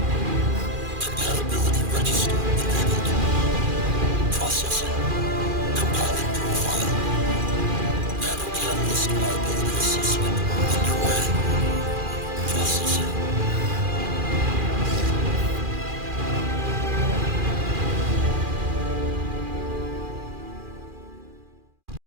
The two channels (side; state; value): left; late; 2.4 ms